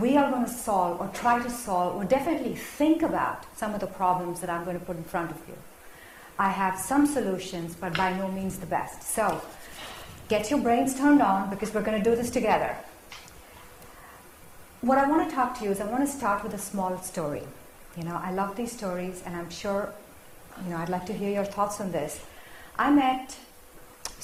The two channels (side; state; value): both; identical; correlation 1.00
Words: are going to solve or try to solve or definitely think about some of the problems that I'm going to put in front of you. I have some solutions, but by no means the best. So get your brains turned on because we're going to do this together. What I want to talk to you is I want to start with a small story. You know, I love these stories, and I'm sure, you know, I'd like to hear your thoughts on this. I met